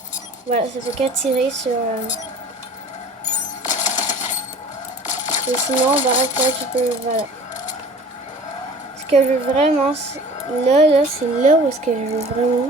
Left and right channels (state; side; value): normal; both; correlation 0.44